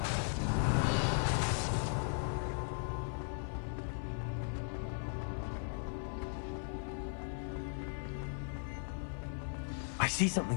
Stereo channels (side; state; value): right; silent; 53 dB below the other